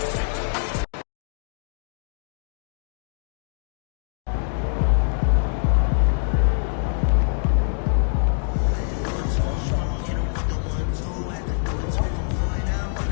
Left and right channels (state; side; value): silent; right; 62 dB below the other